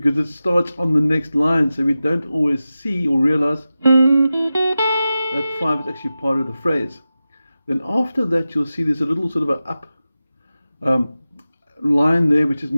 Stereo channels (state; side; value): inverted; both; correlation -0.94